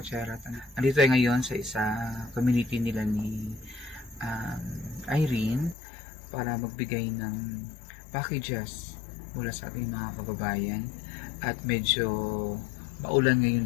Nandito tayo ngayon sa isa community nila ni Irene para magbigay ng packages mula sa ating mga kababayan. At medyo maulan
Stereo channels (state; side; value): drops out; right; at 5.8 s